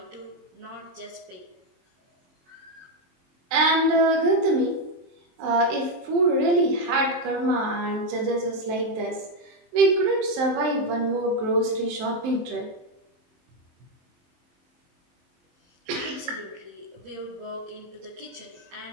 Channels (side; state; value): left; late; 23 ms